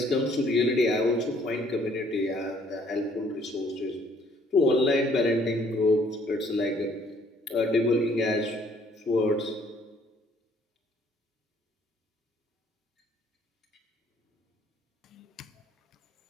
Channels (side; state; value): both; normal; correlation 0.61